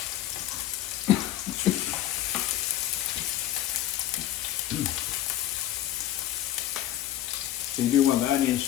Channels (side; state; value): right; quieter; 12.9 dB